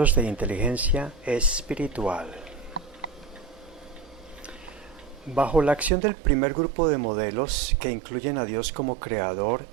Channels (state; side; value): drops out; left; at 5.9 s